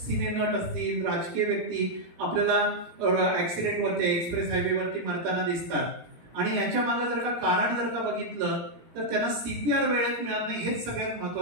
नट असतील, राजकीय व्यक्ती आपल्याला ऍक्सिडेंट वरती, एक्सप्रेस हायवे वरती मरताना दिसतात. आणि याच्या मागे जर का कारण जर का बघितलं तर त्यांना सीपीआर वेळेत मिळत नाही, हेच सगळ्यात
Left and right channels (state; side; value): late; left; 18 ms